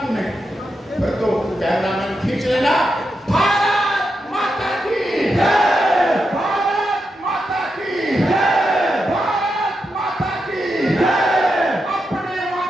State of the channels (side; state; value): both; normal; correlation 0.86